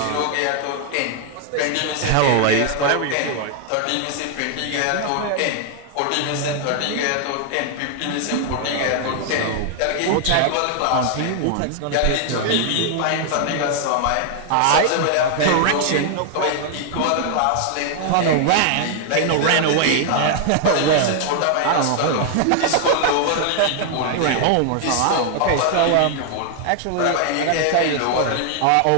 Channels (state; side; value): different; both; correlation 0.00